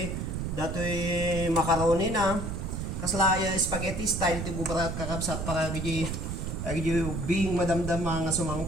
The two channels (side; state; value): right; noise; rumble, 4 dB below the sound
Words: macaroni na. Kasla spaghetti style ti bubarat kakapsat para gidi bing madamdam nga